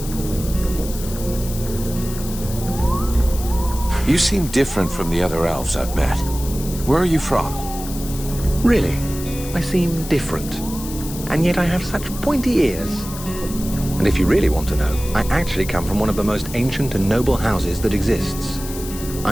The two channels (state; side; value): noise; left; hiss, 12 dB below the sound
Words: You seem different from the other elves I've met. Where are you from? Really? I seem different. And yet I have such pointy ears. And if you really want to know, I actually come from one of the most ancient and noble houses that exists.